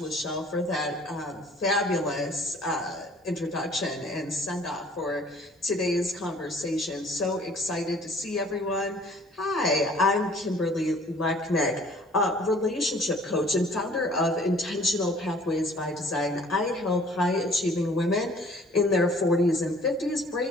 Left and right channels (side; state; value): both; normal; correlation 0.54